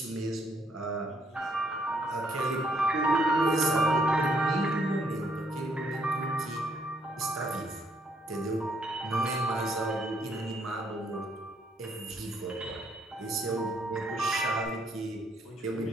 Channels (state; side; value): normal; both; correlation 0.70